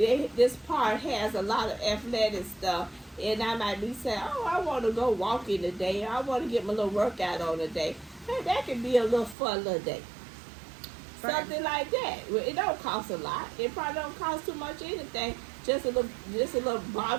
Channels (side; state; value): left; drops out; at 9.3 s